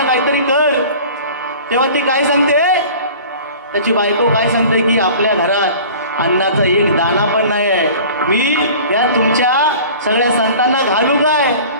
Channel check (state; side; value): inverted; both; correlation -0.42